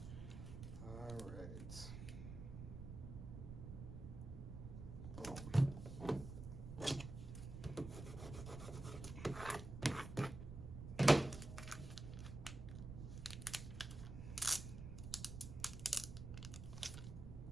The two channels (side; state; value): right; noise; rumble, 8 dB below the sound